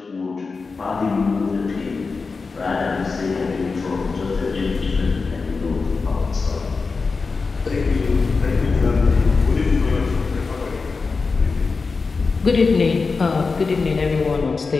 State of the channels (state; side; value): quieter; right; 4.4 dB